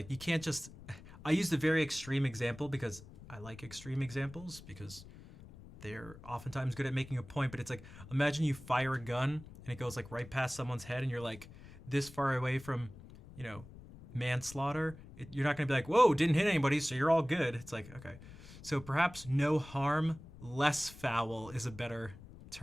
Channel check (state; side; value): noise; left; rumble, 17 dB below the sound